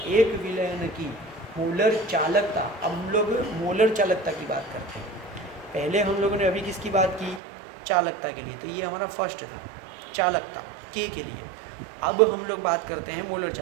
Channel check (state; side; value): drops out; left; at 7.4 s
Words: एक विलयन की मोलर चालकता, अब हम लोग मोलर चालकता की बात करते हैं। पहले हम लोगों ने अभी किसकी बात की? चालकता के लिए, तो ये हमारा फर्स्ट था, चालकता K के लिए। अब हम लोग बात करते हैं मोलर